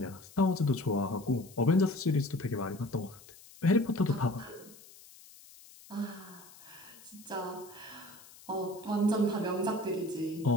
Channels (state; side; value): noise; left; hiss, 21 dB below the sound